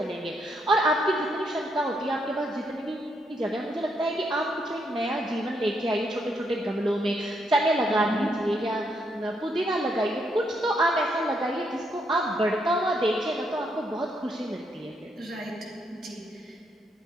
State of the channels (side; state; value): both; normal; correlation 0.76